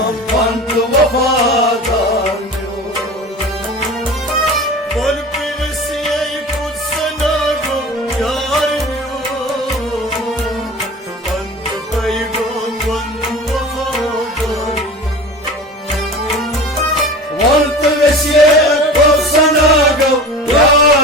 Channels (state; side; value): normal; both; correlation 0.35